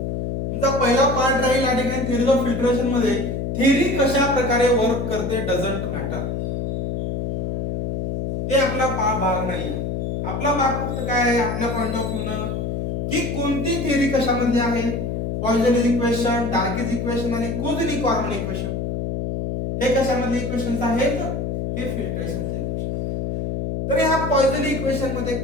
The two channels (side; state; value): left; noise; hum, 2 dB below the sound